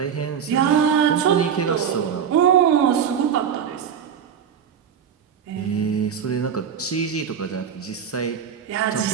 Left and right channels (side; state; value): left; quieter; 7.9 dB